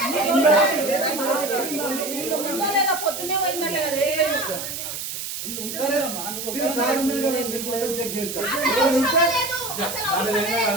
లేదా పొద్దునే పోయిందంట కదా.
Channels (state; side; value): noise; right; hiss, 6 dB below the sound